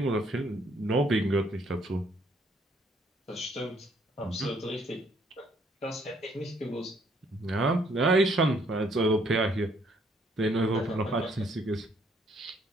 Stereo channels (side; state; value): both; normal; correlation 0.66